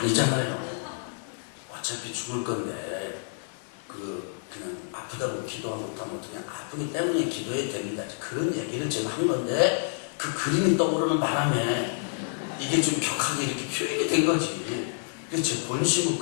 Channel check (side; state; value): right; silent; digital silence